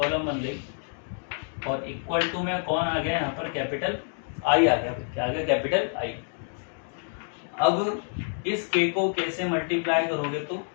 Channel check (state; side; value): silent; right; 57 dB below the other